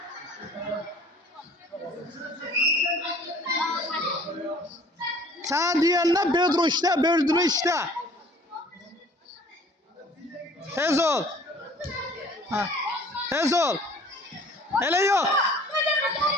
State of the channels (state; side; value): normal; both; correlation 0.52